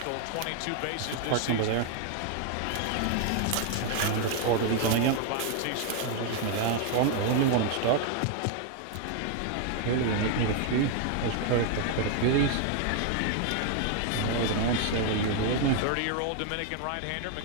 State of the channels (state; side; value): different; both; correlation 0.00